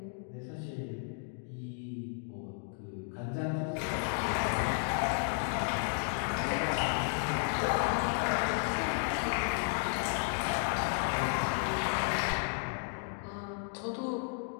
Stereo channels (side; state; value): right; silent; 55 dB below the other